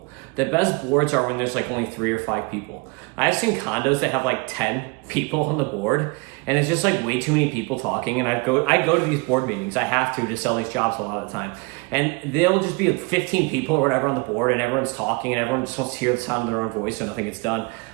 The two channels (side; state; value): left; quieter; 28.2 dB